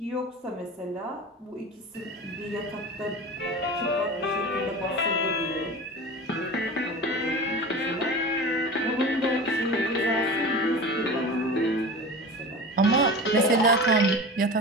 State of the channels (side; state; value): both; normal; correlation 0.33